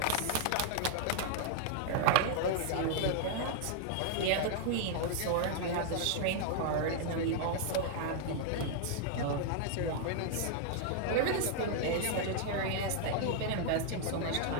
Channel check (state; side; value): different; both; correlation 0.00